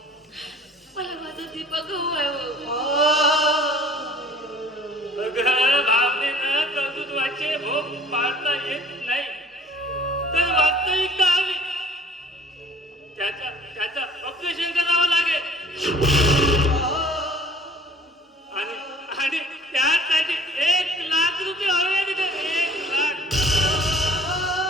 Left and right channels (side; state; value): both; normal; correlation 0.51